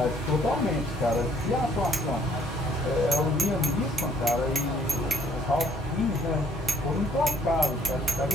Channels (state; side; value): normal; both; correlation 0.63